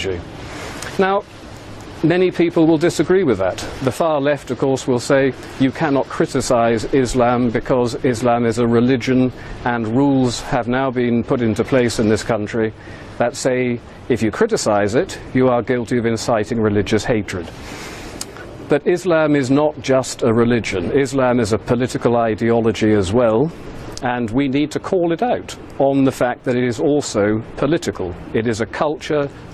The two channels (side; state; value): both; identical; correlation 1.00